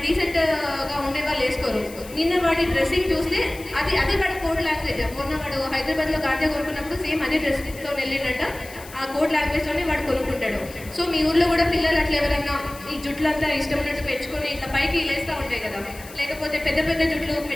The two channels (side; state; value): left; noise; hiss, 18 dB below the sound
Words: డీసెంట్గా ఉండే వాళ్ళు వేసుకోరు. నిన్న వాడి డ్రెస్సింగ్ చూస్తే అదే వాడి కోడ్ లాంగ్వేజ్. మొన్న వాడు హైదరాబాద్లో గాంజా కొనుక్కున్నప్పుడు సేమ్ అదే డ్రెస్తో వెళ్ళిండట. ఆ కోడ్ లాంగ్వేజ్లోనే వాడు కొనుక్కుంటాడు. సో మీ ఊర్లో కూడా పిల్లలు అట్లా ఎవరన్నా ఈ జుట్లంతా ఇష్టం ఉన్నట్టు పెంచుకొని ఇట్లా పైకి లేస్తూ ఉంటాయి కదా, లేకపోతే పెద్ద పెద్ద జుట్లు